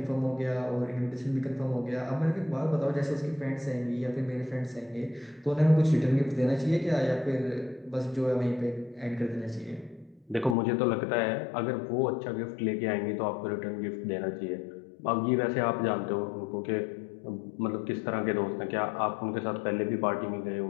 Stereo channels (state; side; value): drops out; right; at 10.6 s